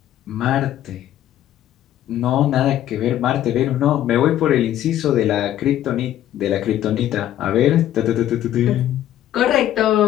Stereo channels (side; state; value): right; quieter; 12.2 dB